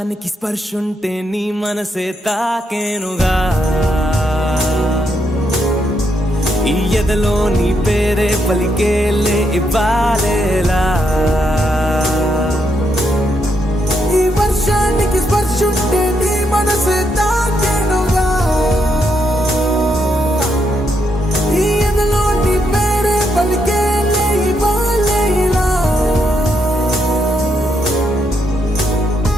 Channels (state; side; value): normal; both; correlation 0.79